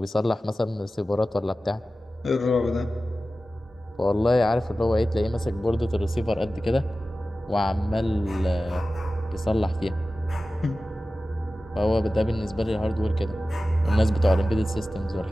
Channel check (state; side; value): normal; both; correlation 0.95